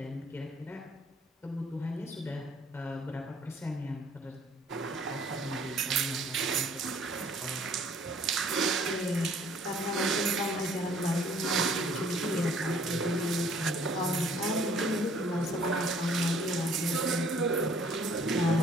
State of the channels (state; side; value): normal; both; correlation 0.58